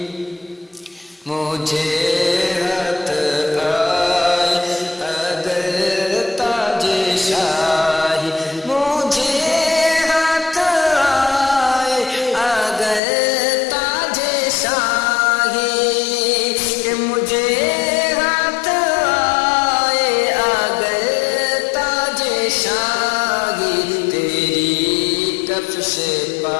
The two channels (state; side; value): drops out; right; at 13.0 s